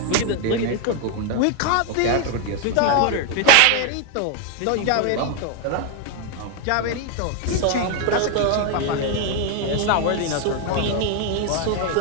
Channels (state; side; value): different; both; correlation 0.01